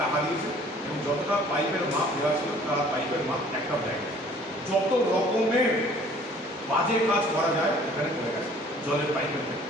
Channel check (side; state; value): both; normal; correlation 0.54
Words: টাকা দিয়েছে এবং যতটা পাইপের মাপ দেওয়া ছিল তারা পাইপের মাপ একটাও দেয় না। যত রকমের বাজে কাজ করা যায় এখানে করে গেছে। জলের পাইপের ক্ষেত্রে,